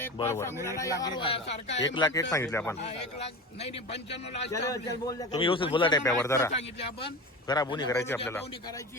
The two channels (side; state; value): both; normal; correlation 0.29